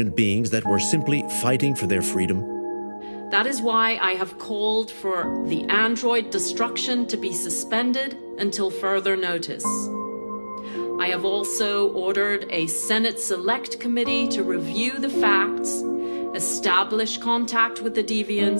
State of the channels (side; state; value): both; inverted; correlation -1.00